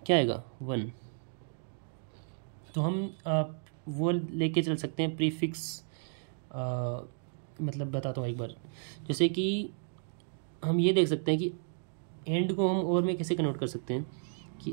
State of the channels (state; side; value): silent; left; digital silence